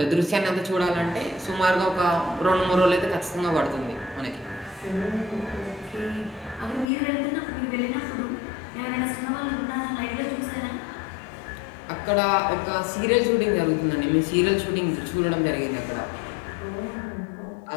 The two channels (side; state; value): right; drops out; at 6.9 s